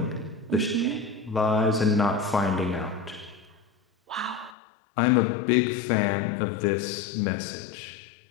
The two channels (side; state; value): right; drops out; at 4.5 s